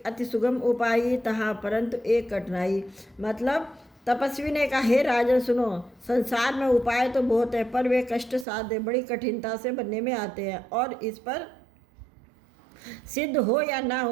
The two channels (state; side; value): drops out; left; at 8.5 s